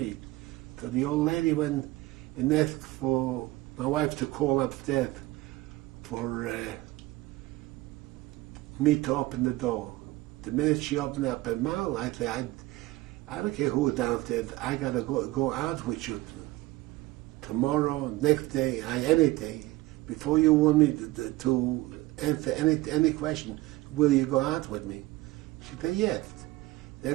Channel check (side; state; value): left; quieter; 19.1 dB